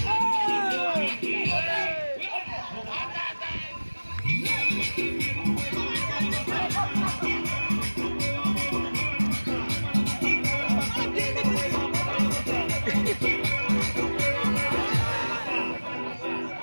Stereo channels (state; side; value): inverted; both; correlation -1.00